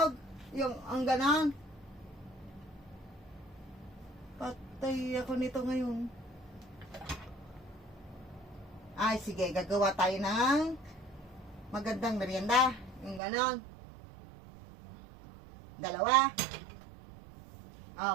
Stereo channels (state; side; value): drops out; left; at 13.2 s